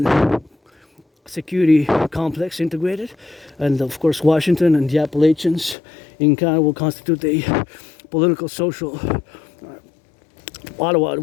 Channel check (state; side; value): drops out; right; at 5.8 s